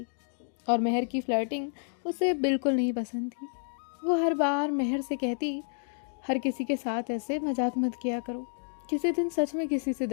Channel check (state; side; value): silent; right; digital silence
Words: और मेहर की फ्लर्टिंग उसे बिल्कुल नहीं पसंद थी। वो हर बार मेहर से कहती, हर किसी के साथ ऐसे मजाक मत किया करो, किसी दिन सच में किसी से